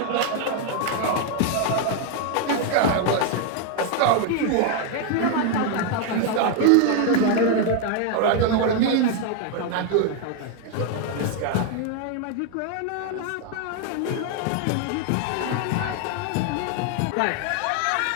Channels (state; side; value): different; both; correlation 0.01